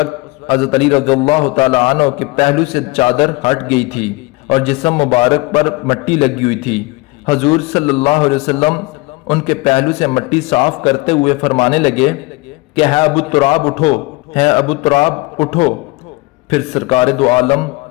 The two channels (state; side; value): quieter; right; 23.6 dB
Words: حضرت علی رضی اللہ تعالی عنہ کے پہلو سے چادر ہٹ گئی تھی اور جسم مبارک پر مٹی لگی ہوئی تھی۔ حضور صلی اللہ علیہ وسلم ان کے پہلو سے مٹی صاف کرتے ہوئے فرمانے لگے کہ ہے ابو تراب اٹھو، ہے ابو تراب اٹھو۔ پھر سرکار دو عالم